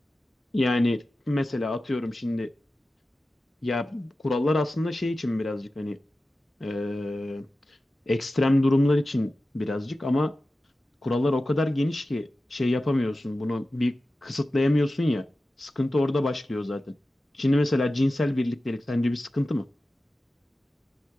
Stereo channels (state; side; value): normal; both; correlation 0.95